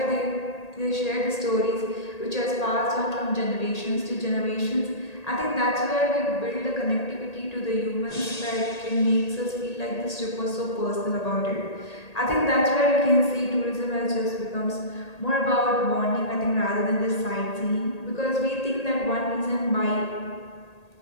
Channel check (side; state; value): right; late; 1.8 ms